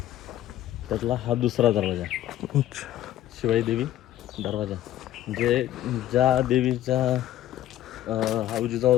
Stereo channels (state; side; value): quieter; right; 13.1 dB